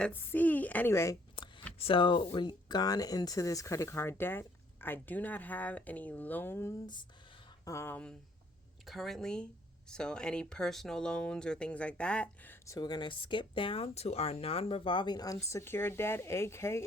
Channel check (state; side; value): normal; both; correlation 0.64